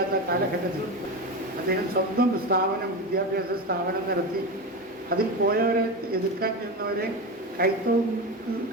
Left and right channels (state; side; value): normal; both; correlation 0.20